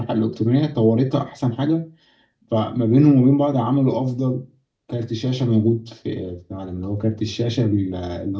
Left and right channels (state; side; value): identical; both; correlation 1.00